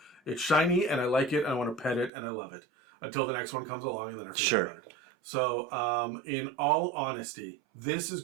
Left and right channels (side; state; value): left; drops out; at 2.1 s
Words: it's shiny and I like it and I want to pet it and I love it. Until the next one comes along and then I forget about it. So in all honesty, this is